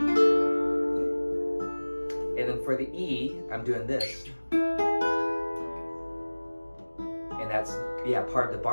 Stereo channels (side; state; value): both; inverted; correlation -1.00